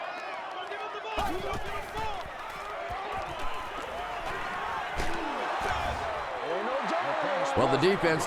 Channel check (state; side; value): identical; both; correlation 1.00